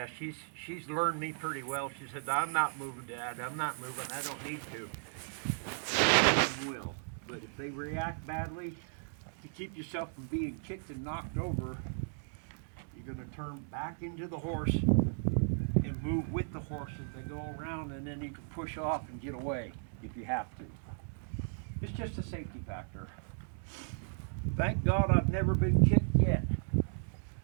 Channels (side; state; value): left; silent; digital silence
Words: she's learned me pretty well. She said, I'm not moving, Dad. I'm not moving. I don't need to. I will. But if they react badly, to keep yourself from being kicked and knocked over, you're going to turn back into the horse and move with the horse as they go around, and then you can push off and get away if you have to. It's just a safety factor. Thank God I've never been kicked yet.